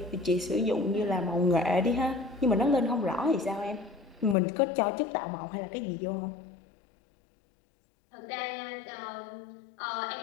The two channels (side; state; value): right; drops out; at 4.4 s